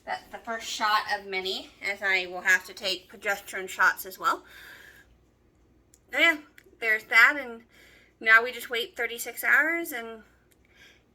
that's the first shot of many, as I will have to take progesterone shots as well. So yeah, there's that, and now we just wait 36 hours and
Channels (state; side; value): identical; both; correlation 1.00